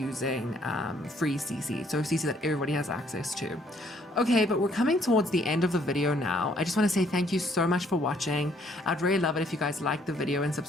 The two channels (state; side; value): normal; both; correlation 0.65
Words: free CC, so CC that everybody has access to. Okay, but we're coming towards the end of the video now. I just want to say thank you so much for watching. I'd really love it if you guys like the video and